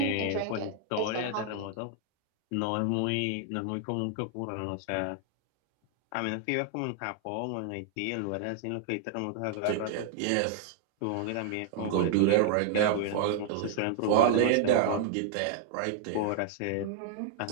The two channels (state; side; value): different; both; correlation -0.01